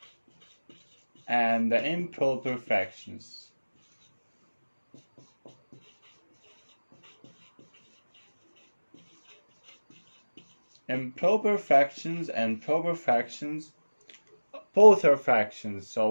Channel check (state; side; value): inverted; both; correlation -1.00